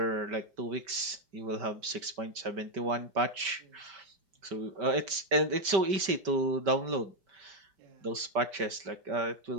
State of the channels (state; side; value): late; left; 5.2 ms